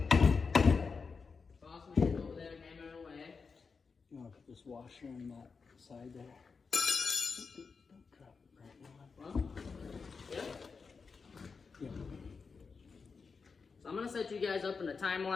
Boss man over there hammering away. You want to put this washer on that side there? Don't drop it right now. Well, yeah. Yeah. So I'm gonna set you guys up in a time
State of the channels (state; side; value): quieter; right; 5.0 dB